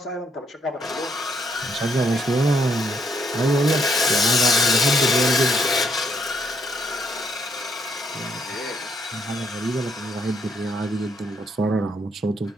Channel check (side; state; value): both; normal; correlation 0.72